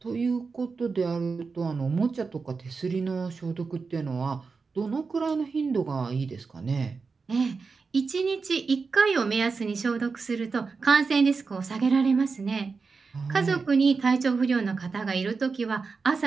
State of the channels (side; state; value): left; quieter; 4.7 dB